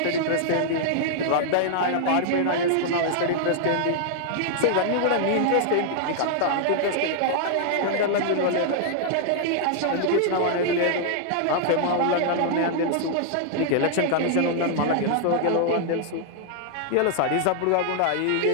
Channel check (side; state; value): both; different; correlation -0.01